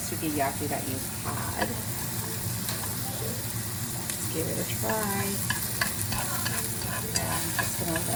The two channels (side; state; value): both; identical; correlation 1.00